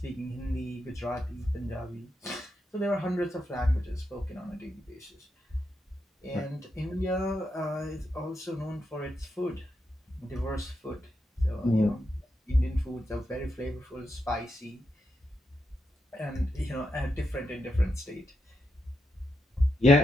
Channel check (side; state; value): both; normal; correlation 0.84